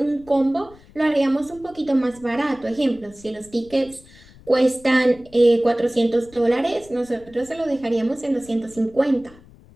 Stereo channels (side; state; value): left; noise; rumble, 24 dB below the sound